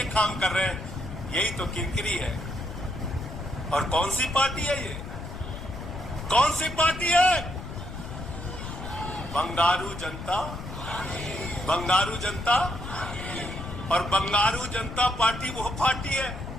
काम कर रहे हैं, यही तो किरकिरी है। और कौन सी पार्टी है ये? कौन सी पार्टी है? बंगारू जनता, बंगारू जनता। और बंगारू जनता पार्टी वो पार्टी है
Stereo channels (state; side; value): noise; left; rumble, 9 dB below the sound